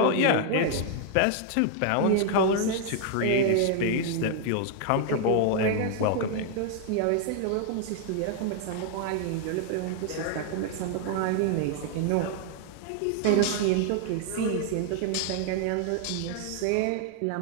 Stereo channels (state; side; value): different; both; correlation 0.00